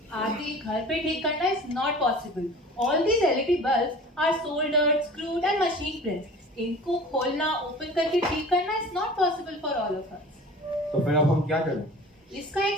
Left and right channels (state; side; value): normal; both; correlation 0.42